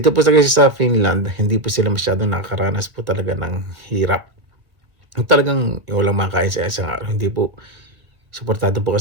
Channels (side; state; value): left; late; 1.7 ms